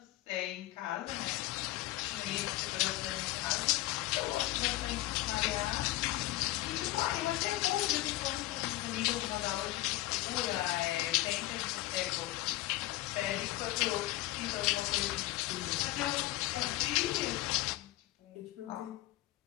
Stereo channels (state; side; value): quieter; right; 17.3 dB